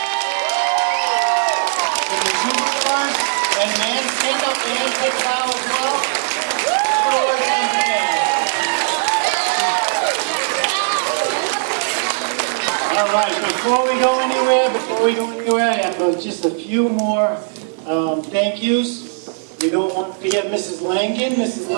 for the superstars, and man, stand up and take a bow as well. Good work once again. All right, before we go anywhere, I have just a few more thank yous. We don't want to forget Mrs. Langan. Mrs.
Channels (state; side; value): silent; left; digital silence